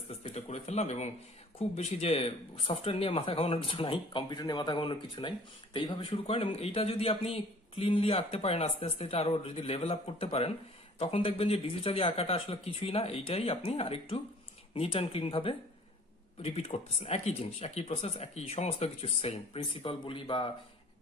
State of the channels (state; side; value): normal; both; correlation 0.50